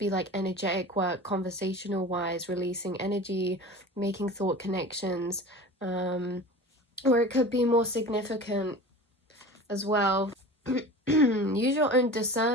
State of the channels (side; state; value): both; normal; correlation 0.36